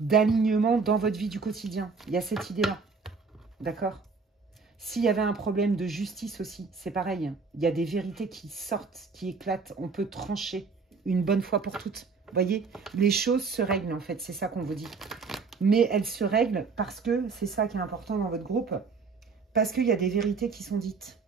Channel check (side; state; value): left; quieter; 4.8 dB